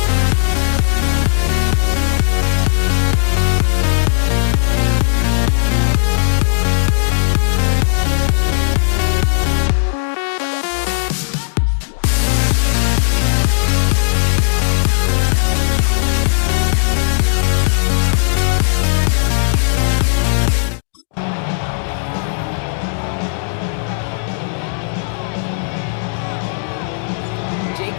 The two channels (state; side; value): silent; right; digital silence